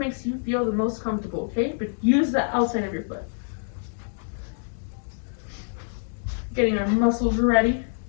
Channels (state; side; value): silent; right; digital silence